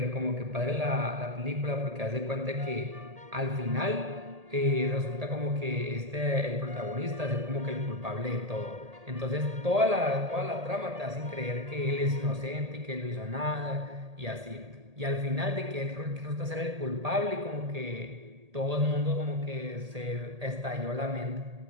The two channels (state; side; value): late; left; 1.8 ms